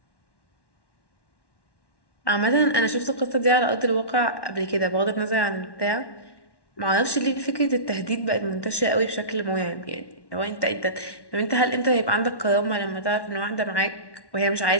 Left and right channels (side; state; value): right; late; 1.1 ms